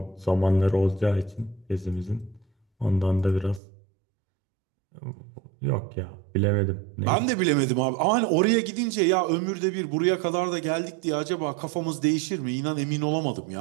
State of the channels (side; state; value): left; drops out; at 3.6 s